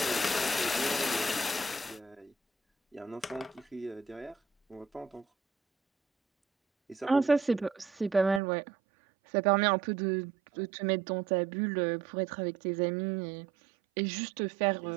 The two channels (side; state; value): left; drops out; at 8.4 s